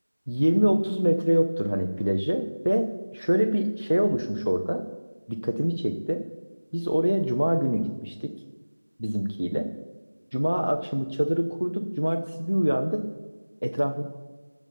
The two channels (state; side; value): inverted; both; correlation -1.00